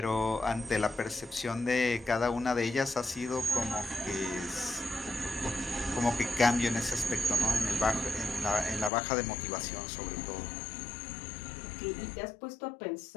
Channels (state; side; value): drops out; right; at 8.9 s